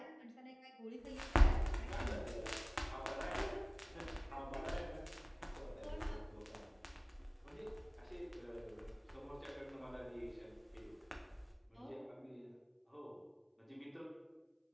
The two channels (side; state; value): both; identical; correlation 1.00